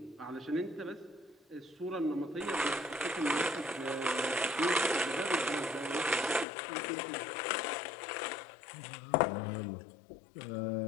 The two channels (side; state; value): right; drops out; at 6.5 s